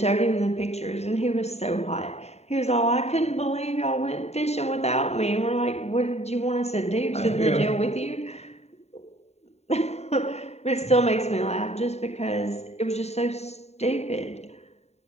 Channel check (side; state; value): right; late; 0.31 ms